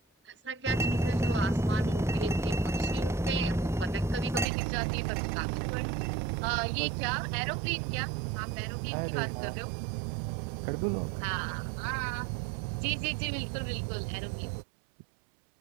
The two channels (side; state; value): left; drops out; at 4.5 s